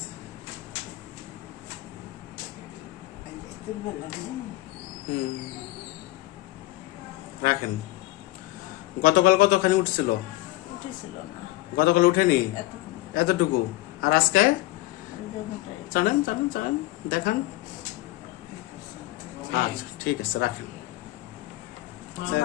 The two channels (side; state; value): right; quieter; 18.5 dB